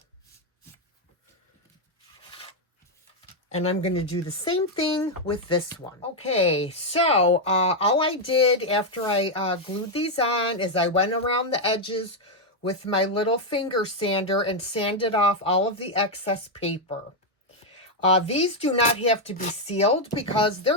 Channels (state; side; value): normal; both; correlation 0.01